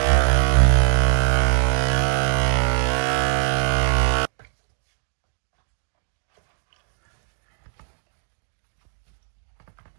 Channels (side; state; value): left; silent; 64 dB below the other